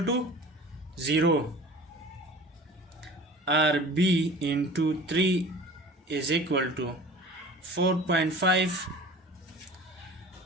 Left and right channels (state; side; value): normal; both; correlation 0.41